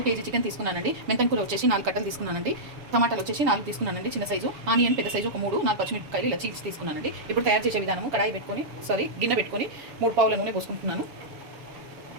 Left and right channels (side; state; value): left; late; 7.1 ms